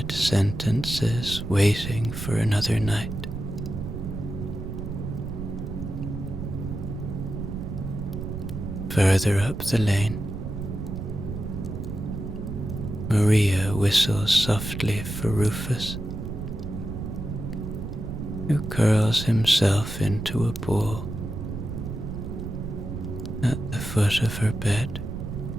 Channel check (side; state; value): right; noise; rumble, 6 dB below the sound